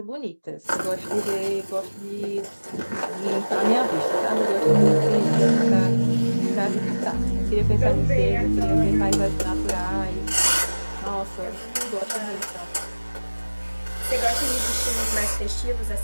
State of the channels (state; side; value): inverted; both; correlation -1.00